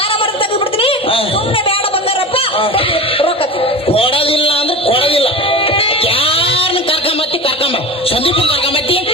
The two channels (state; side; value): normal; both; correlation 0.31